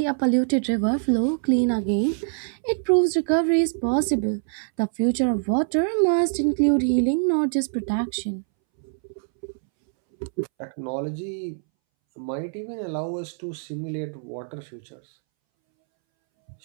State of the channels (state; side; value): silent; left; 62 dB below the other